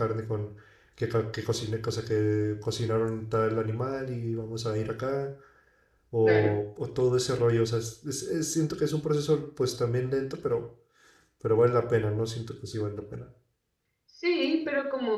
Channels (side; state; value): both; identical; correlation 1.00